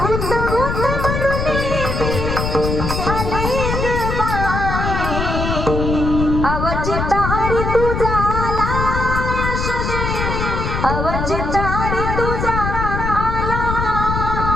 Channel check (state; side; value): noise; left; rumble, 2 dB below the sound